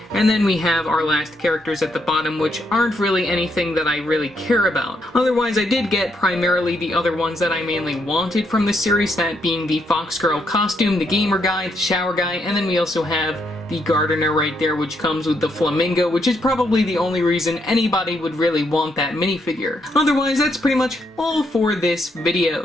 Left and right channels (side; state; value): both; normal; correlation 0.76